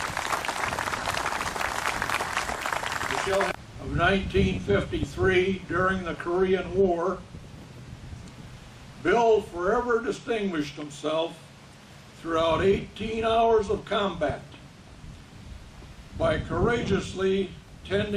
Of 1953, during the Korean War, Bill forever distinguished himself throughout 18 hours of combat by courageously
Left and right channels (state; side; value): identical; both; correlation 1.00